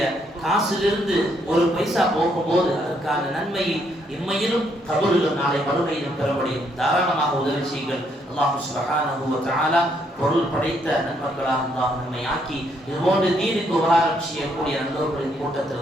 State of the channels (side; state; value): both; normal; correlation 0.72